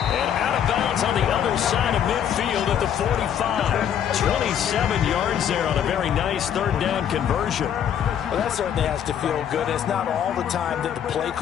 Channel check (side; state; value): right; quieter; 9.2 dB